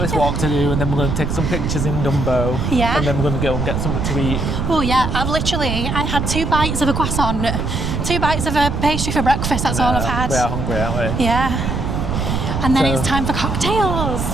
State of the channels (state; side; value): noise; right; rumble, 1 dB below the sound